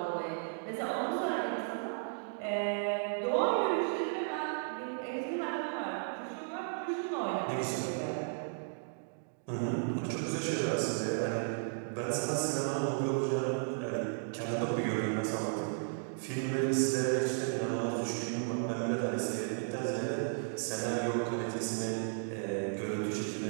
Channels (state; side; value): silent; left; digital silence